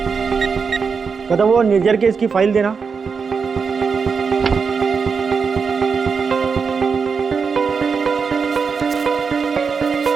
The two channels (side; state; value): left; quieter; 5.6 dB